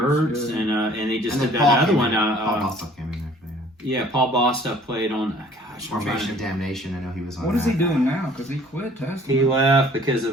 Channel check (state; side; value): normal; both; correlation 0.54